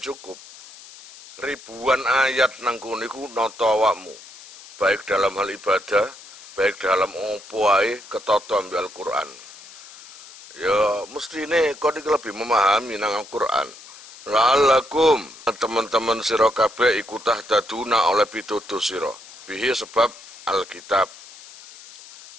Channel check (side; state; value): left; noise; hiss, 18 dB below the sound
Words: cukup. Ribuan ayat nang kono iku nata awakmu, baik dalam hal ibadah, baik dalam opo ae ketata ambil Al-Qur'an. Ya mestine kok iki lebih memahami nang Al-Qur'an. La'allakum teman-teman sira kabeh iku tahtaduna oleh pitutur sira. Bihi sebab Alkitab.